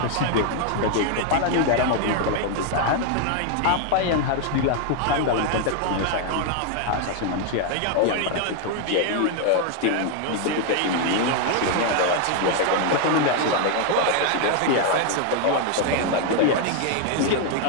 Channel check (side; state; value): both; different; correlation 0.00